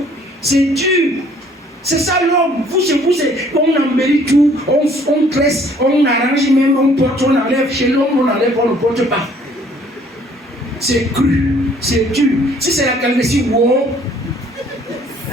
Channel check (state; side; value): normal; both; correlation 0.59